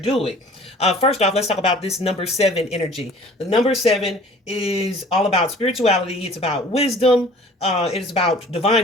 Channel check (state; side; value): normal; both; correlation 0.49